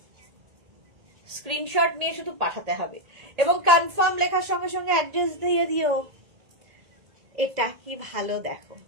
Screenshot নিয়ে শুধু পাঠাতে হবে এবং কনফার্ম লেখার সঙ্গে সঙ্গে অ্যাড্রেস দিয়ে দিও। এটা কি ভালো দেখো,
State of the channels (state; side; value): late; left; 1.8 ms